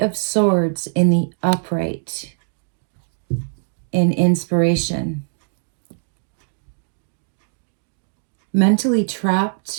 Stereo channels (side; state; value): left; silent; digital silence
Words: Swords in the upright. In inspiration. Mentally